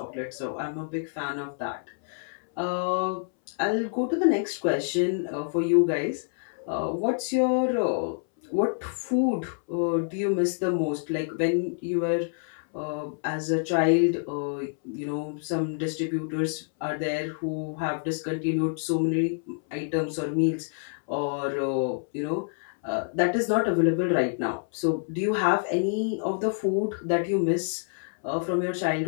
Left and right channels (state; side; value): silent; right; 60 dB below the other